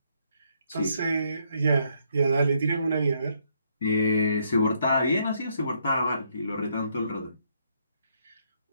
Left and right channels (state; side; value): inverted; both; correlation -0.73